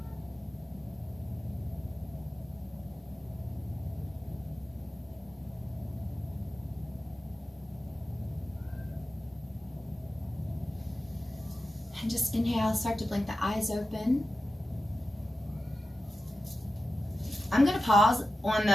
And just inhale, start to blink the eyes open. I'm going to pause on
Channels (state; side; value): normal; both; correlation 0.92